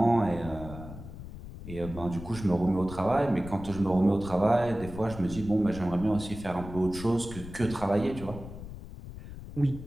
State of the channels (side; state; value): left; noise; rumble, 12 dB below the sound